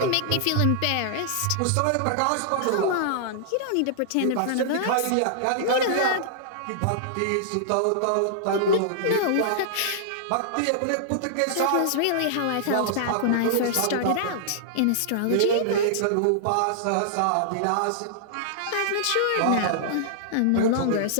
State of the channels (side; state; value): both; different; correlation -0.01